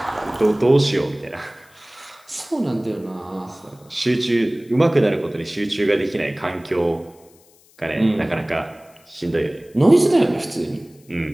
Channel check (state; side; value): noise; left; hiss, 29 dB below the sound